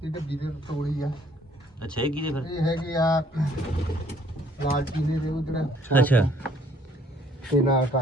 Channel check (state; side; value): normal; both; correlation 0.61